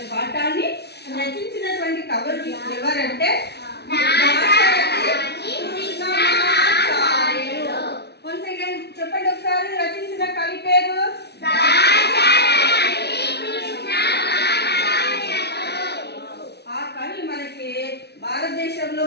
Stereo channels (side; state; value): right; late; 0.49 ms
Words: పాఠాన్ని రచించినటువంటి కవులు ఎవరంటే వన్స్ అగైన్ చెప్పండి ఒకసారి, రచించిన కవి పేరు? ఆ కవి మనకి భారతదేశంలో